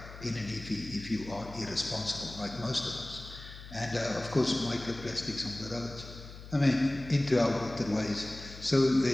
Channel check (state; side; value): noise; left; hum, 14 dB below the sound